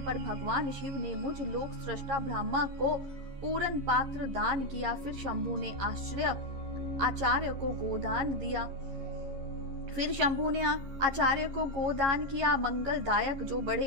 भगवान शिव ने मुझ लोक सृष्टा ब्रह्मा को पूर्ण पात्र दान किया। फिर शंभु ने आचार्य को गोदान किया। मंगलदायक जो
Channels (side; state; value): left; late; 11 ms